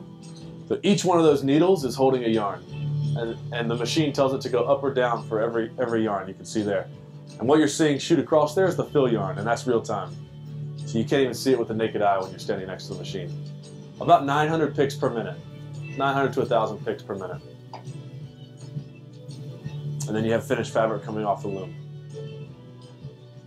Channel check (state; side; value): identical; both; correlation 1.00